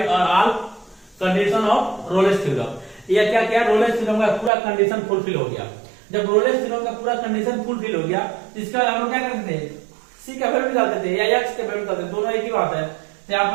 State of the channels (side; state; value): left; drops out; at 4.5 s